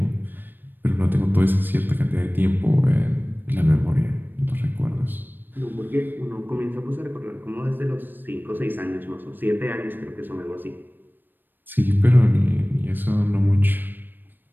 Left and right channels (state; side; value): late; left; 0.093 ms